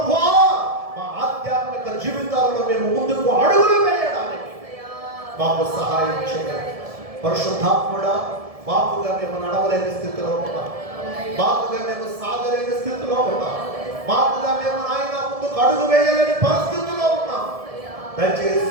మా ఆధ్యాత్మిక జీవితాలలో మేము ముందుకు అడుగులు వేయడానికి మాకు సహాయం చేయాలి. పరిశుద్ధాత్ముడా, మాకుగా మేము నడవలేని స్థితిలో ఉన్నాం, మాకుగా మేము సాగలేని స్థితిలో ఉన్నాం, మాకుగా మేము ఆయన ముందుకు అడుగు వేయలేని పరిస్థితిలో ఉన్నాం.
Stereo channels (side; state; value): left; late; 1.7 ms